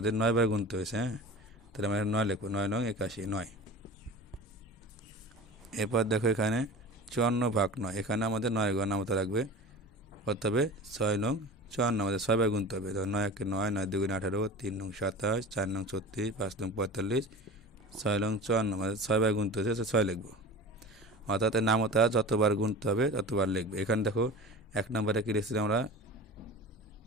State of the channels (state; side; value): normal; both; correlation 0.35